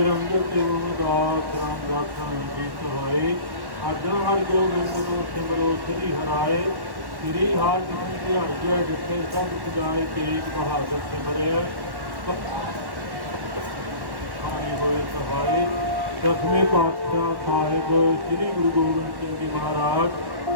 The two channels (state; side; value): late; left; 1.1 ms